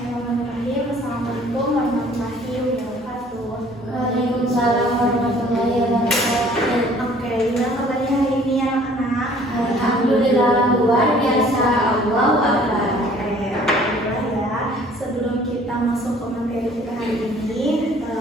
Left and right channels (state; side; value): normal; both; correlation 0.55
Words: Assalamualaikum warahmatullahi wabarakatuh. Waalaikumsalam warahmatullahi wabarakatuh. Oke, gimana kabarnya hari ini anak-anak? Alhamdulillah luar biasa. Allahu Akbar. Oke, alhamdulillah ya. Sebelum kita masuk ke materi kita hari ini,